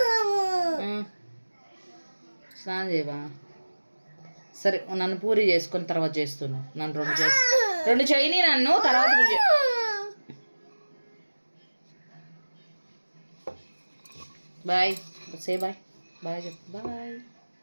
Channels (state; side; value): inverted; both; correlation -1.00